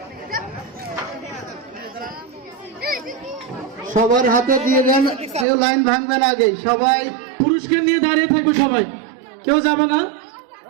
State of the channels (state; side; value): drops out; left; at 5.5 s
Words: সবার হাতে দিয়ে দেন, কেউ লাইন ভাঙবে না আগে। সবাই পুরস্কার নিয়ে দাঁড়িয়ে থাকবে, সবাই কেউ যাবে না।